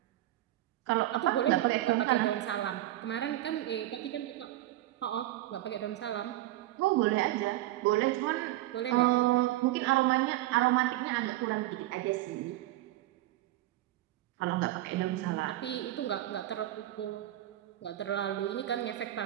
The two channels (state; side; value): quieter; left; 15.4 dB